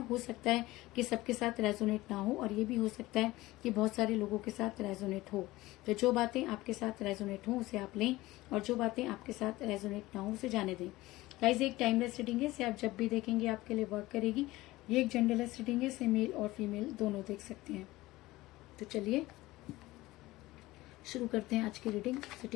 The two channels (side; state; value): right; quieter; 18.6 dB